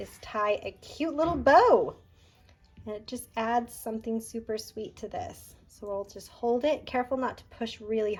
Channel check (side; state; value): both; identical; correlation 1.00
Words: tie a cute little bow. And it just adds something super sweet to this. So we'll just hold it. Careful not to push really